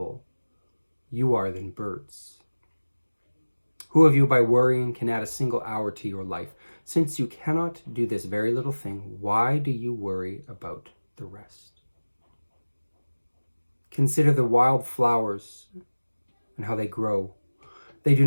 you are than birds. Who of you by worrying can add a single hour to your life? Since you cannot do this very little thing, why do you worry about the rest? Consider the wild flowers and how they grow. They do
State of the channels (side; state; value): both; inverted; correlation -1.00